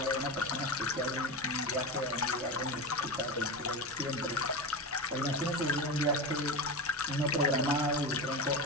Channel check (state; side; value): noise; right; hum, 28 dB below the sound